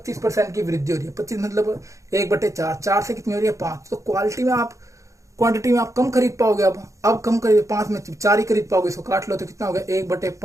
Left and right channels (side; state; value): left; late; 0.15 ms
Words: की वृद्धि हो रही है। 25 मतलब 1/4, 4 से कितनी हो रही है 5, तो क्वालिटी में आप, क्वांटिटी में आप कम खरीद पाओगे। अब कम खरीद, 5 में 4 ही खरीद पाओगे, इसको काट लो तो कितना हो गया